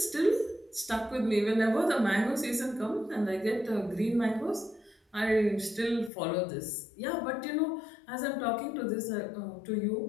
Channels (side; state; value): right; drops out; at 6.1 s